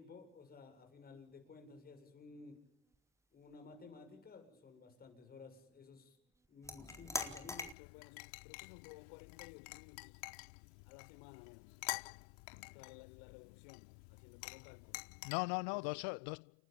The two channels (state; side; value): drops out; right; at 7.8 s